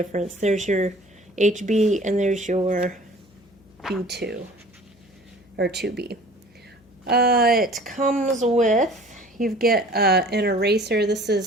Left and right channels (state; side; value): noise; left; hum, 30 dB below the sound